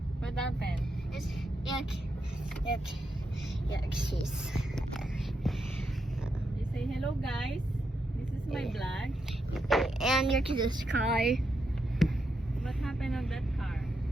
What happened? It's yuck. Cheese. You say hello, guys. This is my vlog. And you're to this car. What happened on that car?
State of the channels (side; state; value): both; normal; correlation 0.83